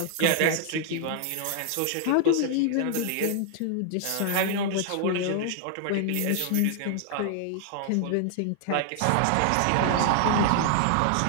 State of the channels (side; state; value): both; different; correlation 0.00